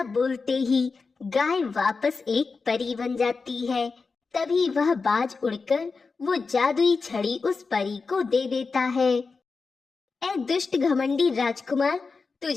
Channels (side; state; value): right; quieter; 4.5 dB